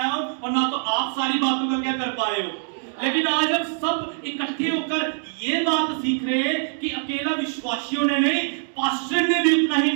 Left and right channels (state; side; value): silent; left; 63 dB below the other